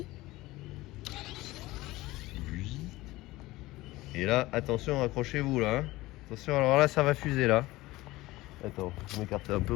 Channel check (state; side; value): quieter; right; 18.8 dB